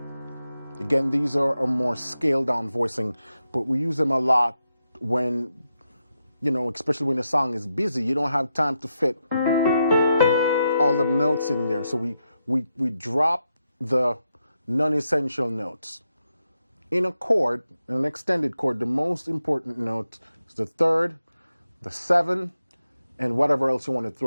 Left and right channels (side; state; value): both; inverted; correlation -0.86